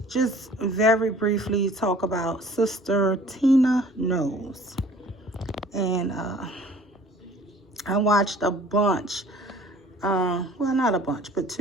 just very briefly talk about Sister Tina Knowles. And I watched a bunch, well, not a bunch, but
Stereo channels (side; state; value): both; normal; correlation 0.51